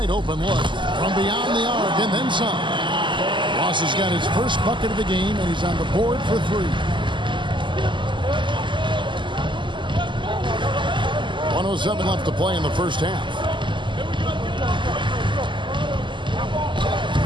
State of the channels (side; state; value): left; late; 0.24 ms